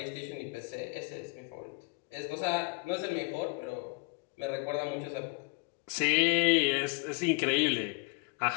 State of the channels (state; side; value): quieter; right; 30.9 dB